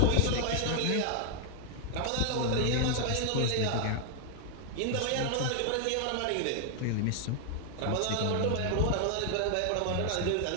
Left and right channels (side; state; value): both; different; correlation 0.00